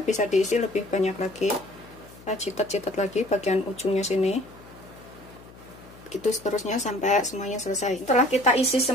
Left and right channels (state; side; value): noise; left; hum, 21 dB below the sound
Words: bisa diisi lebih banyak lagi. Kita citat-citat lagi bagian ujungnya sini. Gitu seterusnya sampai semuanya selesai. Setelah kita isi